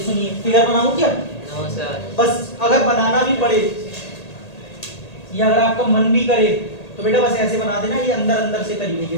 फिगर बनाऊं क्या? No sir. बस अगर बनाना भी पड़े या अगर आपका मन भी करे तो बेटा बस ऐसे बना देना, ये अंदर अंदर से करी हुई है,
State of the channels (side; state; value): right; late; 1.8 ms